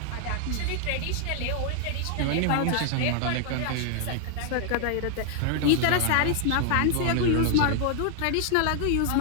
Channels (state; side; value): different; both; correlation 0.00